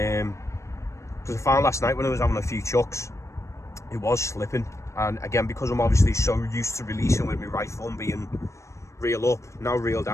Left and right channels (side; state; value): right; late; 0.14 ms